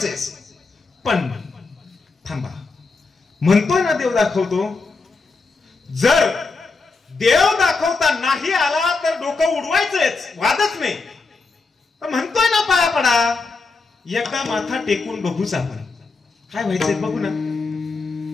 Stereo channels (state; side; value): quieter; right; 4.1 dB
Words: पण थांबा. म्हणतोय ना देव दाखवतो. जर देव दाखवता नाही आला तर डोकं उडवायचंच, वादच नाही. म्हणतोय ना पाया पडा, एकदा माथा टेकून बघूच आपण, काय व्हायचंय बघू ना.